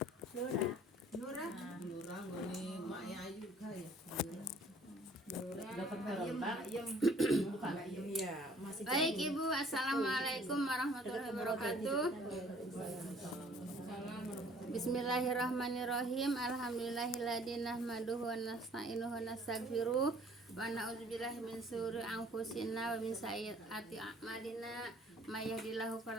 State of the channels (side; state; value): both; normal; correlation 0.56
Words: Lura Lura Lurah gini maknya Ayu kah ya. dapat ayam bukan ayam iya masih Baik Ibu, assalamualaikum warahmatullahi wabarakatuh. Bismillahirrahmanirrahim. Alhamdulillahilladzi nahmaduhu wa nasta'inuhu wa nastaghfiruh wa na'udzubillahi min syururi anfusina wa min sayyiati a'malina. May yahdihillahu